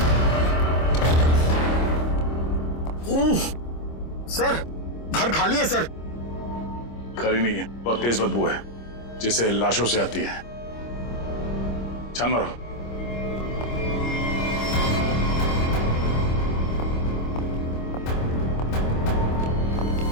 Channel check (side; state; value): right; late; 25 ms